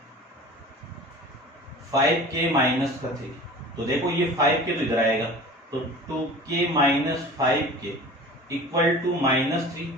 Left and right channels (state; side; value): normal; both; correlation 0.40